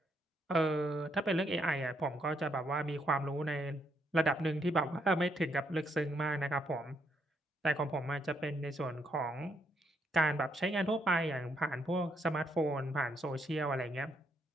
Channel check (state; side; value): normal; both; correlation 0.75